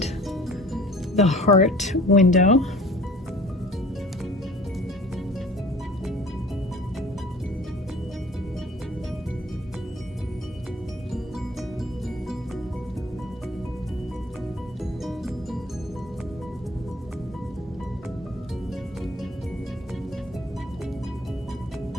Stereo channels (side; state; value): both; normal; correlation 0.49